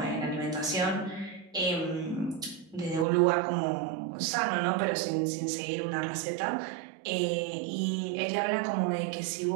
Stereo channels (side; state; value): left; drops out; at 3.1 s